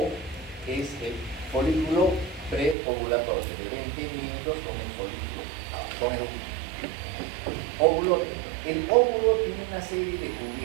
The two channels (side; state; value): left; drops out; at 2.8 s